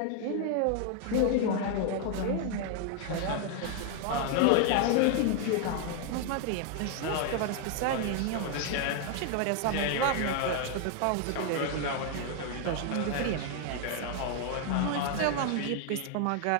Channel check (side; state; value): both; different; correlation 0.00